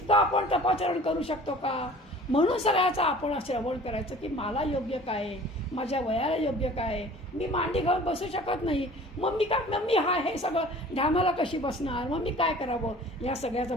आपण तपाचरण करू शकतो का? म्हणून सगळ्याचं आपण श्रवण करायचं की मला योग्य काय आहे, माझ्या वयाला योग्य काय आहे. मी मांडी घालून बसू शकत नाही, मग मी काय, मग मी हे सगळं ढामाला कशी बसणार, मग मी काय करावं या सगळ्याचं.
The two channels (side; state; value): both; normal; correlation 0.46